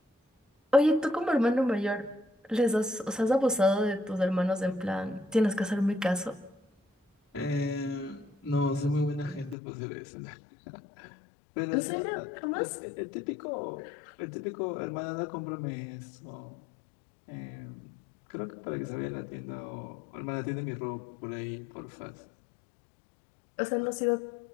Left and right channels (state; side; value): drops out; right; at 9.6 s